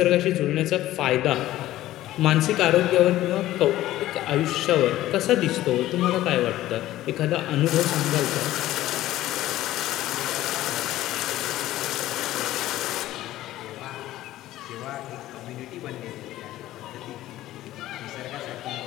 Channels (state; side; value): quieter; right; 14.9 dB